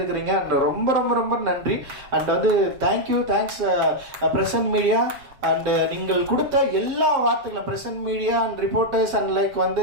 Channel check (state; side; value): late; left; 7.5 ms